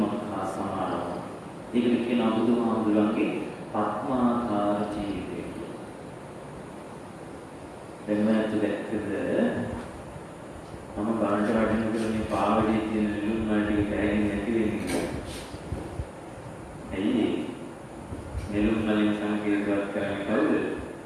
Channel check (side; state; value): both; identical; correlation 1.00